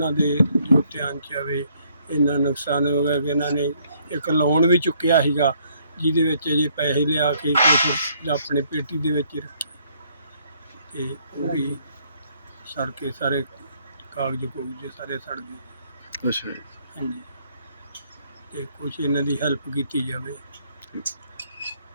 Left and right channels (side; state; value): both; inverted; correlation -0.67